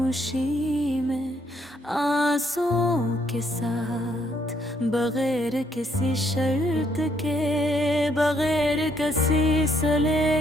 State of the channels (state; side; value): normal; both; correlation 0.70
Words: में, आंसुओं के साथ, बगैर किसी शर्त के, बगैर किसी